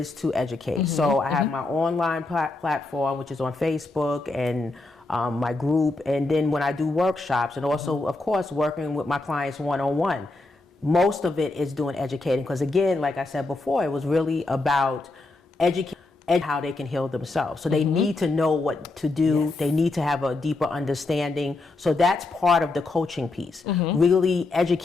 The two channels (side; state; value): right; quieter; 3.2 dB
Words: to educate. So I have my online platform, which is on Facebook, and my group. And then when I do workshops, and also, of course, working with my clients one-on-one, most of it is doing educating. Because again, like I said before, it was really about educating and how they can heal themselves. So they need to know what to do. They need to have a deeper understanding. So that's part of the coaching piece, really